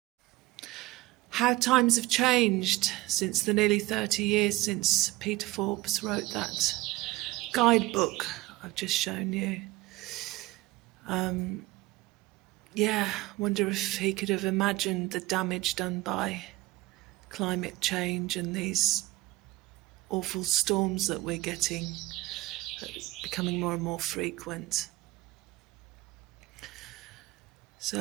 How times have changed since the nearly 30 years since Peter Forbes wrote that guidebook I've just shown you. Yeah, wonder if he could have imagined the damage done by climate change and these awful storms that we're getting, becoming more and more frequent.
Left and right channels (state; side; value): quieter; left; 19.3 dB